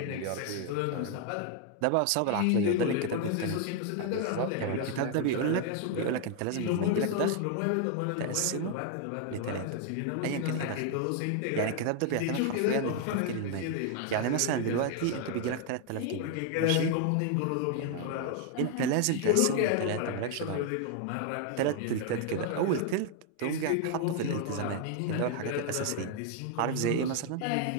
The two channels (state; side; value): different; both; correlation 0.00